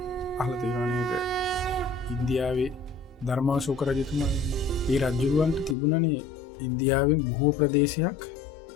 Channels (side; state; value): right; drops out; at 5.8 s